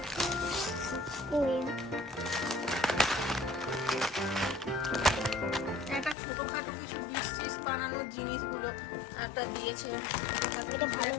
Win. একটা ছোটখাটো কিছু ডিশ বানানোর জিনিসগুলো একটা দিয়েছে, এটা ভালো।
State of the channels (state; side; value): drops out; right; at 6.2 s